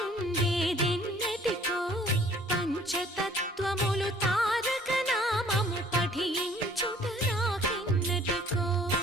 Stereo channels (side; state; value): both; normal; correlation 0.56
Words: పంచతత్వములు తారక నామము పఠించుట నాకెన్నటికో